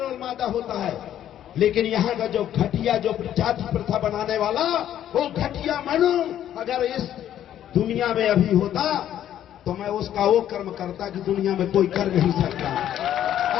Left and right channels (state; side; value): quieter; right; 11.1 dB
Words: और मादा होता है। लेकिन यहाँ का जो घटिया, जो जाति प्रथा बनाने वाला, वो घटिया मनु अगर इस दुनिया में अभी होता तो मैं उसका वो कर्म करता कि दुनिया में कोई कर नहीं सकता।